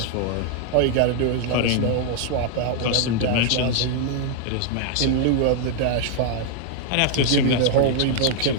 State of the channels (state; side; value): different; both; correlation 0.00